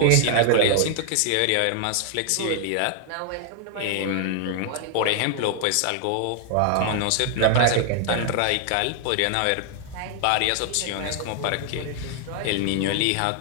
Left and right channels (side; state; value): both; different; correlation 0.00